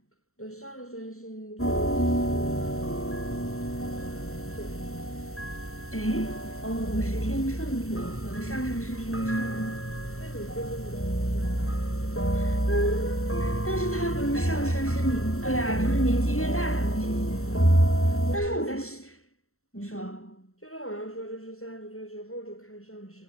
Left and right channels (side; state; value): right; late; 0.63 ms